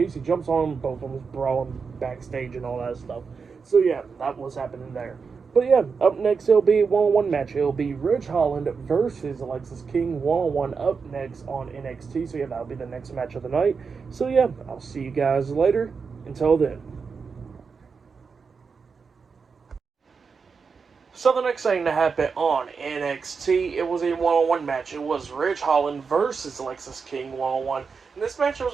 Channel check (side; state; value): left; quieter; 5.3 dB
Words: jumps on him, both of them brawling backstage and all that stuff. So yeah, that was happening there. But yeah, up next it'll be a one-on-one match. It'll be Ridge Holland versus Alexis King, one-on-one up next on NXT. So yeah, that'll be the next match of the night. So yeah, I'll see you guys later. Until then. So the next thing to happen on NXT, it was a one-on-one match. It was Ridge Holland versus Lexis King one-on-one. And this match was